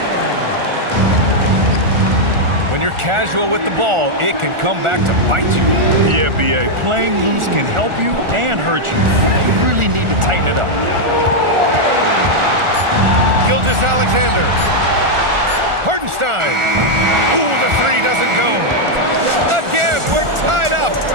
When you're casual with the ball, it can come back to bite you. Yeah, B.A. Playing loose can help you and hurt you. You really need to tighten it up. Gilgeous-Alexander. Hartenstein. Ooh, the three doesn't go. Again, we're tied up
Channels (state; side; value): late; left; 1.4 ms